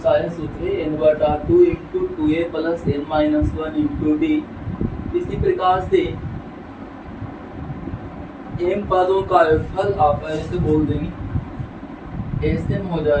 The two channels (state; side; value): identical; both; correlation 1.00